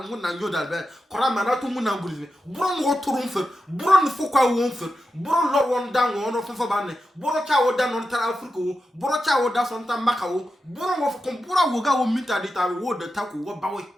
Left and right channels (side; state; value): both; normal; correlation 0.90